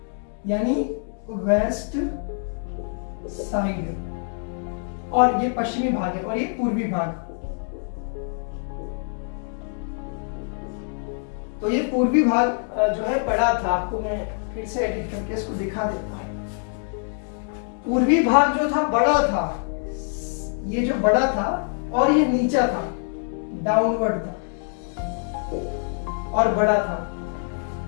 यानी वेस्ट साइड, और ये पश्चिमी भाग है और ये पूर्वी भाग। तो ये पूर्वी भाग जो है बड़ा था। आपको मैं फिर से एडिट करके इसको दिखा देता हूं। पूर्वी भाग जो था बड़ा था, ये जो बड़ा था, और ये नीचा था, डाउनवर्ड था और बड़ा था।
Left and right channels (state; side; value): silent; right; 58 dB below the other